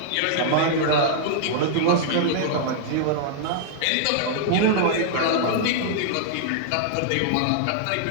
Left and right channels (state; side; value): different; both; correlation -0.01